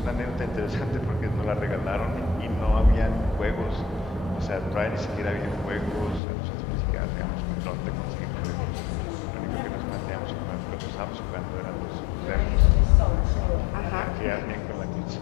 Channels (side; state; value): right; drops out; at 6.2 s